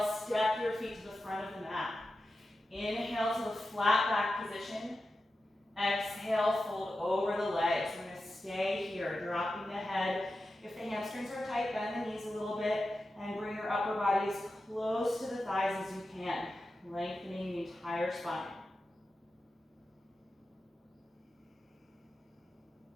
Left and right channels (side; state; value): both; normal; correlation 0.92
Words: step your feet to the front of the mat. Inhale to the flat back position. Exhale, fold over the legs. We're going to stay here, dropping the head. If the hamstrings are tight, bend the knees a little bit and bring your upper body as close to the thighs as you can, lengthening the entire spine.